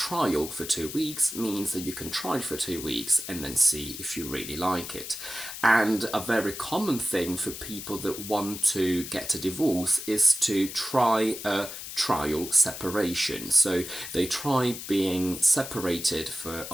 for 2 weeks, means that you can try it for 2 weeks and then see if you really like it. And a very common thing for people that want to get a divorce is to try a trial separation. So they try being separated for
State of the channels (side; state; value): left; noise; hiss, 9 dB below the sound